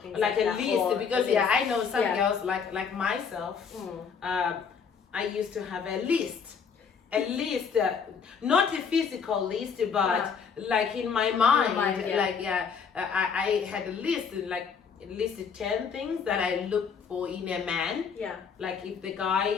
things like a that. list, because I know some girls like myself. I used to have a list, not a physical list, but like in my mind, I had a list, like listed 10 things that I look for in a man. Yeah. Like if the guy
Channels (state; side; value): quieter; right; 6.2 dB